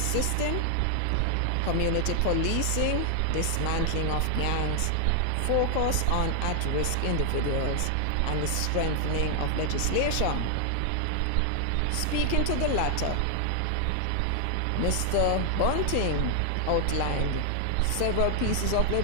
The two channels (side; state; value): both; different; correlation 0.00